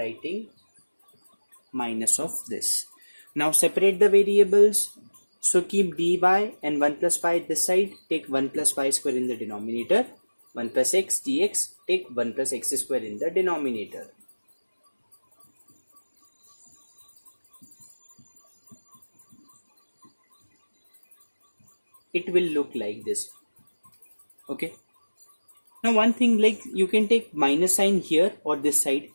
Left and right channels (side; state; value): both; inverted; correlation -1.00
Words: minus of this. Now separate the variables. So keep dy and 1 plus y this side. Take 1 plus y square in the denominator. 1 plus x dx. Take 1 plus x square in the denominator. It will look like this. Okay, now one thing, like you can take minus sign here or this side,